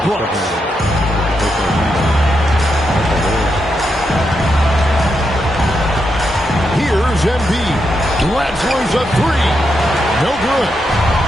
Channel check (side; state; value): both; normal; correlation 0.83